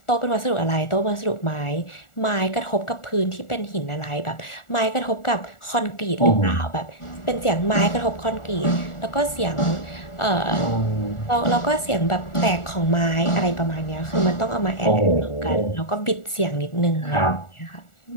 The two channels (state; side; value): late; right; 1.4 ms